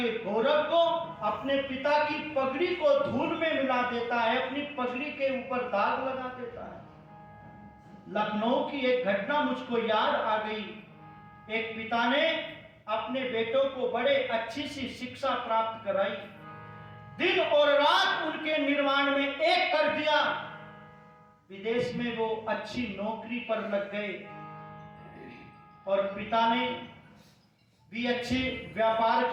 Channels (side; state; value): both; identical; correlation 1.00